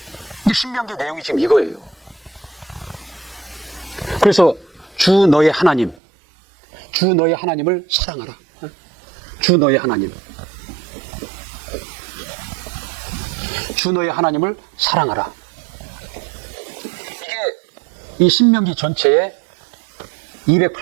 신명기 내용이 지금 이거예요. 그래서 주 너의 하나님을 사랑하라. 주 너의 하나님을 사랑하라. 이게 이 신명기 전체에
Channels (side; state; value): left; drops out; at 6.0 s